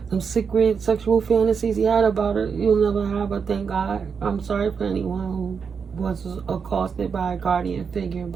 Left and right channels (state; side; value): quieter; left; 6.1 dB